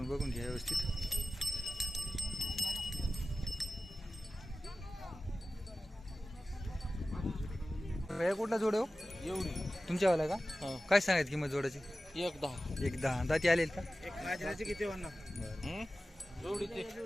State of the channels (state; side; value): normal; both; correlation 0.95